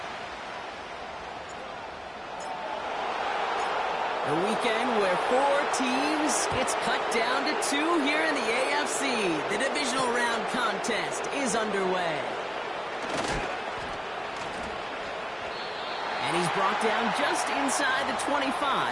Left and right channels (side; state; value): both; identical; correlation 1.00